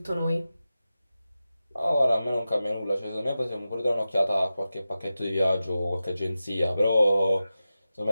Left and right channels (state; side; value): inverted; both; correlation -0.93